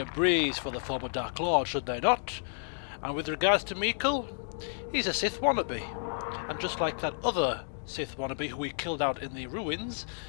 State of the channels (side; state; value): right; silent; digital silence